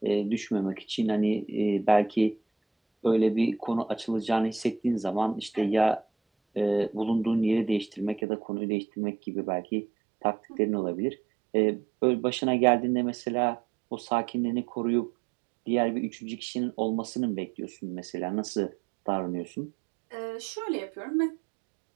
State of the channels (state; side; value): drops out; left; at 8.2 s